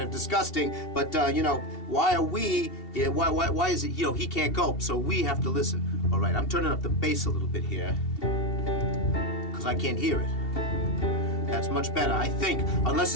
of disgusting, but you know, why are we? Yeah, why is it? You know, he can't cope, so we have to listen. All right, I'm turning up the bass a little bit here because I can't hear it. That's much better, I think, unless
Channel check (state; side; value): late; right; 2.7 ms